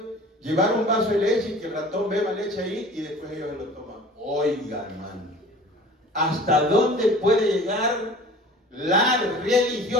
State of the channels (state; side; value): normal; both; correlation 0.43